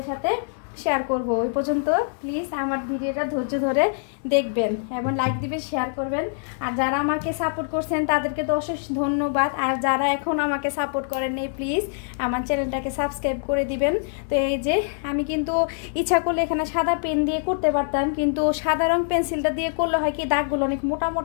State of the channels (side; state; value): right; silent; digital silence